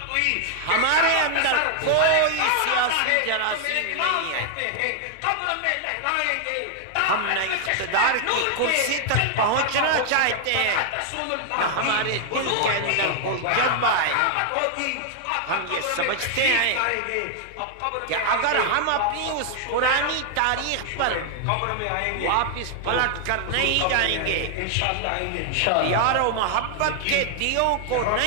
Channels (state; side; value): different; both; correlation 0.00